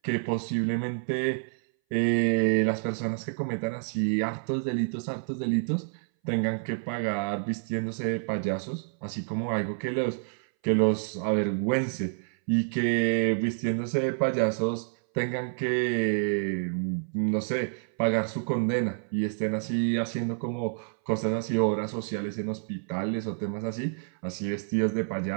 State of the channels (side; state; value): left; silent; 59 dB below the other